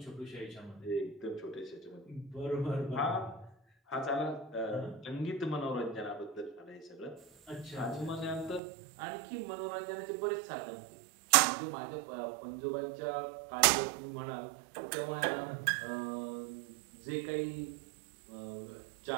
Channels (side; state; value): left; drops out; at 8.6 s